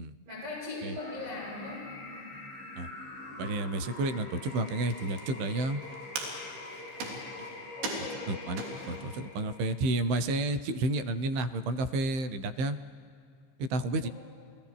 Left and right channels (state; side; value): late; left; 15 ms